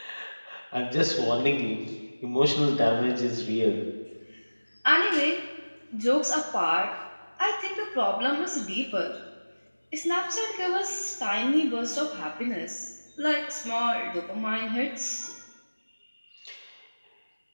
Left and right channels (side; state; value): both; inverted; correlation -1.00